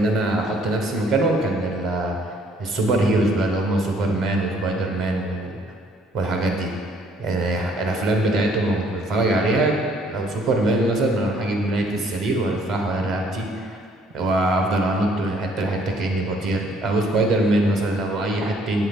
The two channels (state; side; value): normal; both; correlation 0.63